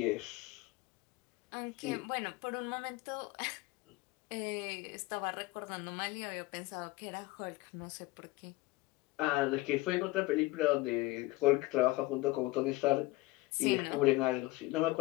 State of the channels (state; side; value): quieter; right; 20.8 dB